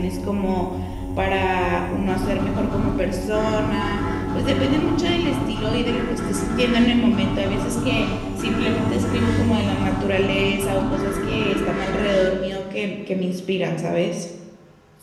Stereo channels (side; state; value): both; identical; correlation 1.00